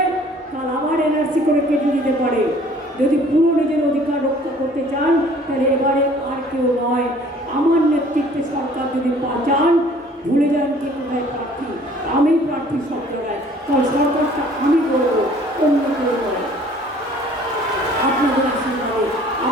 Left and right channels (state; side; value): normal; both; correlation 0.54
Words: কাল আবার এনআরসি করে কেটে দিতে পারে। যদি পুরো নিজের অধিকার রক্ষা করতে চান, তাহলে এবারে আর কেউ নয়, আমার নেতৃত্বে সরকার যদি চান, ভুলে যান কে কোথায় প্রার্থী। আমি প্রার্থী সব জায়গায়, কারণ সরকারটা আমি করবো, অন্য কেউ করে। আপনাদের আশীর্বাদে,